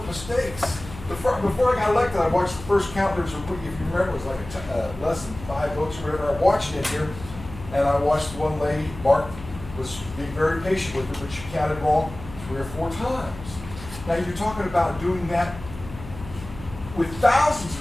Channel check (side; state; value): left; noise; hum, 14 dB below the sound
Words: mistakes. Before I got elected, I watched the first count. There was if you remember, it was like less than 5 votes or whatever. I watched it here, and I watched one lady, Mark, was being very patient with her, but she counted wrong 3 or 4 times. Now you're talking about doing that with thousands of